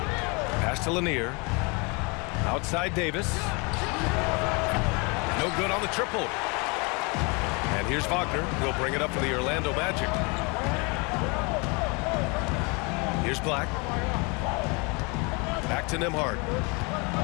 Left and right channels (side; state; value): right; quieter; 30.1 dB